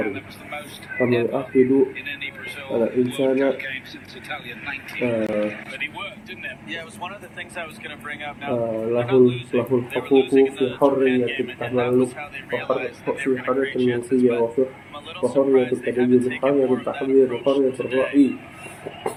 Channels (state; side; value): identical; both; correlation 1.00